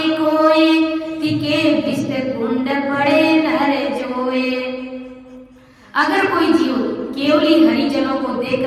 कोई तिके विष कुंड पड़े नर जोए। अगर कोई जीव केवली हरिजनों को देख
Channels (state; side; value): identical; both; correlation 1.00